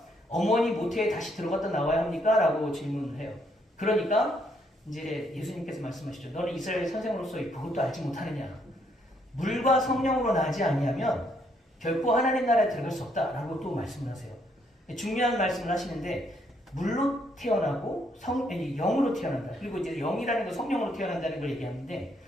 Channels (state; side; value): normal; both; correlation 0.72